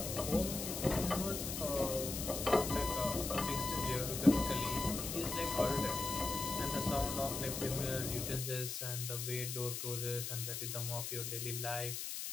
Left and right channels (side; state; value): left; noise; hiss, 4 dB below the sound